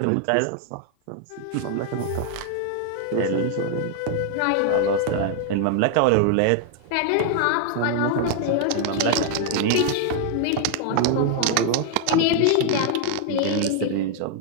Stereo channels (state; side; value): different; both; correlation 0.00